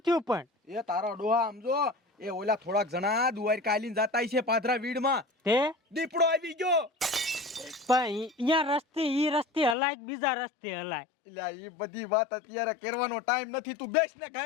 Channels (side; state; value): right; drops out; at 9.8 s